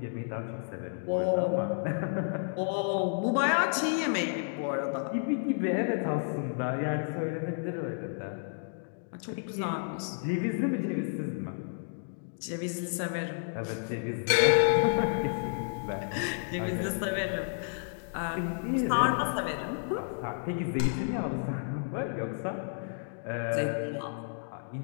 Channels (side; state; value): right; silent; digital silence